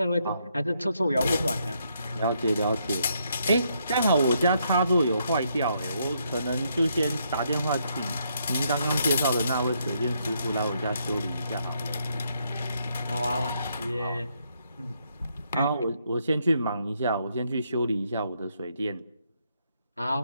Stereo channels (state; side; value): inverted; both; correlation -0.75